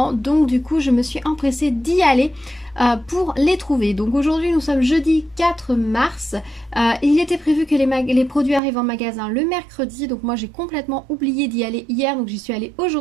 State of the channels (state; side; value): drops out; left; at 8.6 s